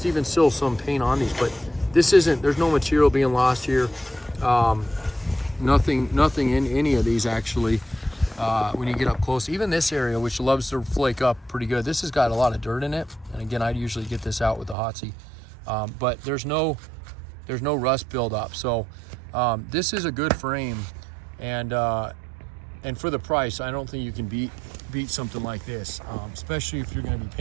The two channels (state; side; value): drops out; left; at 14.8 s